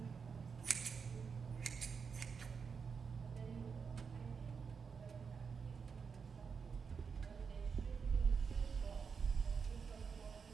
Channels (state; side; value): quieter; left; 5.8 dB